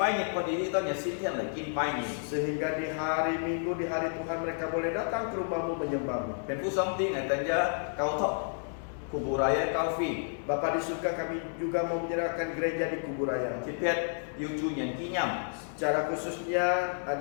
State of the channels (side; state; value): right; silent; digital silence